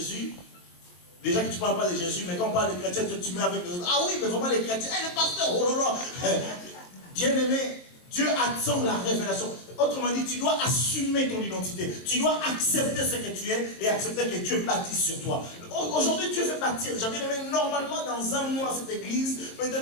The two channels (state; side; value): late; right; 23 ms